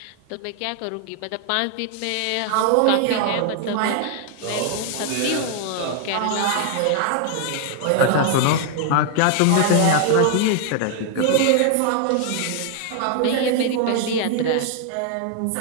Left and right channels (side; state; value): both; different; correlation 0.00